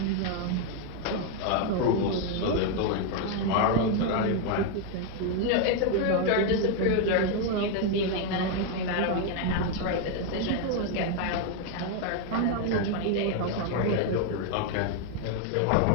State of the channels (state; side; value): different; both; correlation 0.01